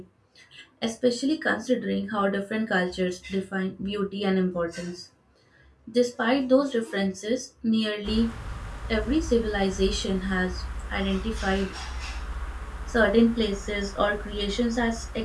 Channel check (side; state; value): both; identical; correlation 1.00